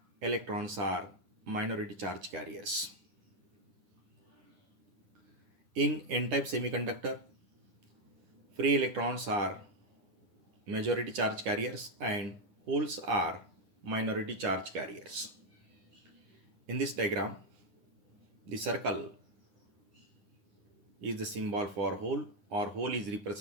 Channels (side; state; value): left; late; 9.9 ms